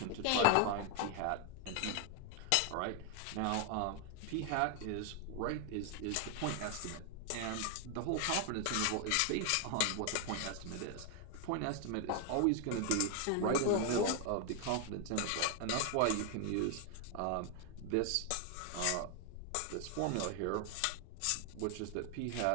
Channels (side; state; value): both; different; correlation 0.00